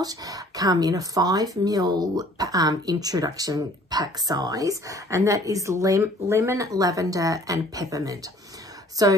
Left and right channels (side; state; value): both; normal; correlation 0.54